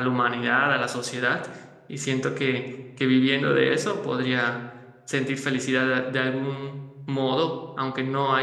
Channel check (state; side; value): identical; both; correlation 1.00